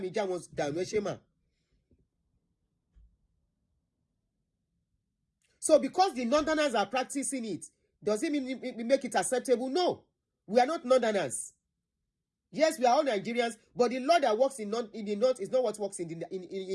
já wọn dànù ẹṣẹ mà. So because the Northerners are practicing it, does it mean we make it acceptable? No. We are not Northerners. Yes, we are all Nigerians, but the law that works in the North is not what works in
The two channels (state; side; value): identical; both; correlation 1.00